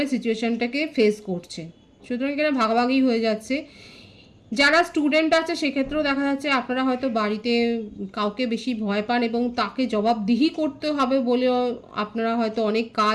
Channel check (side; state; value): both; identical; correlation 1.00